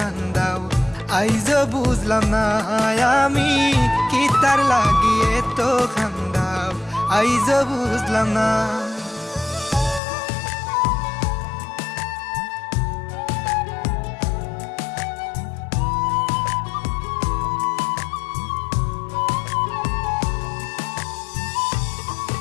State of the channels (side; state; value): right; drops out; at 10.0 s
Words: আইজ বুঝলাম না আমি কিতার লাগি এত খান্দাও আইজ বুঝলাম না